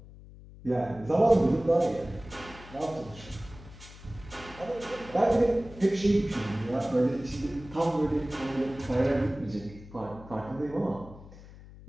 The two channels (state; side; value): noise; left; hum, 18 dB below the sound